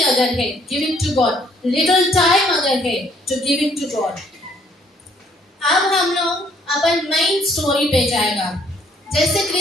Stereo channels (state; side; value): normal; both; correlation 0.64